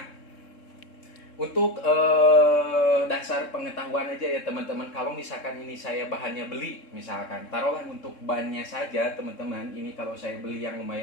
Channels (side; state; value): right; late; 3.7 ms